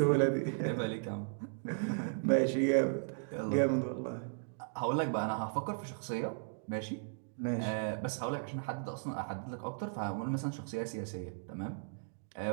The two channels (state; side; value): silent; left; digital silence